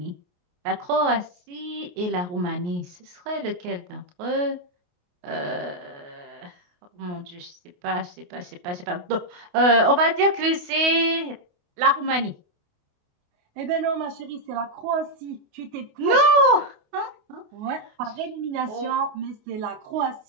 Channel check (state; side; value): late; left; 28 ms